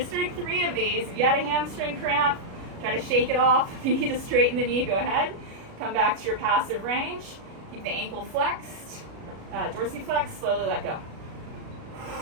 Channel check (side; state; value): left; late; 37 ms